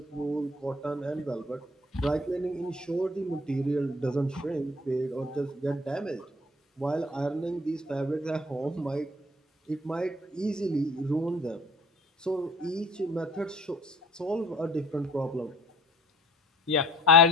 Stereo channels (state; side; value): normal; both; correlation 0.52